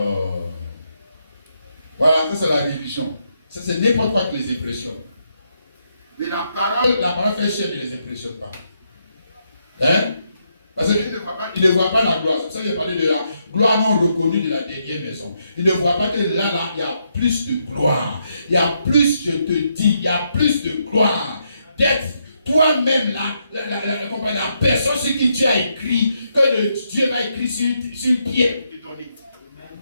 Voilà, ça c'est la religion. Ça, c'est n'importe quoi qui les impressionne. Et la parole fait chaîne ne les impressionne pas. Hein? Parce qu'il ne voit pas la gloire. C'est pour ça qu'il a parlé de la gloire non reconnue de la dernière maison. Il ne voit pas que là, il y a plus de gloire. Il y a plus, je te dis, il y a plus de gloire. D'être toi-même la personne sur qui tu as écrit, que Dieu va écrire sur le pied de ton lit.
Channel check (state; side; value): inverted; both; correlation -0.79